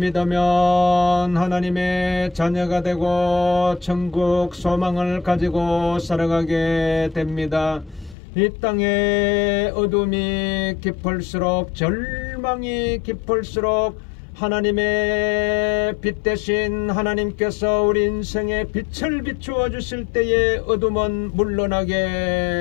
하나님의 자녀가 되고 천국 소망을 가지고 살아가게 됩니다. 이 땅의 어둠이 깊을수록, 절망이 깊을수록 하나님의 빛 대신 하나님께서 우리 인생에 빛을 비추어 주실 때에 어둠은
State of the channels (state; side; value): drops out; right; at 8.2 s